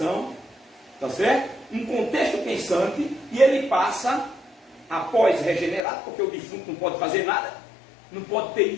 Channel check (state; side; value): drops out; right; at 5.8 s